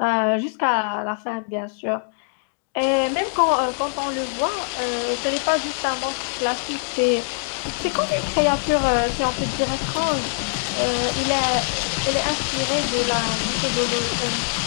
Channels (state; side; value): silent; right; digital silence